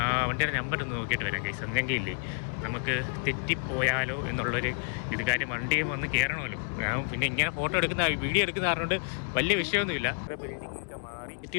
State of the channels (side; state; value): right; silent; digital silence